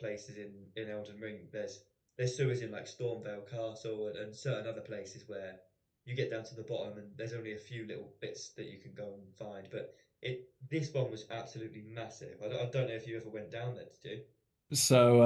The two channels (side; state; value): both; identical; correlation 1.00